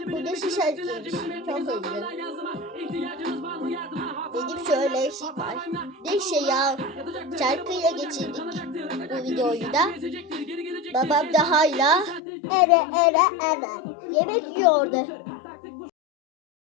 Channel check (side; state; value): right; drops out; at 12.2 s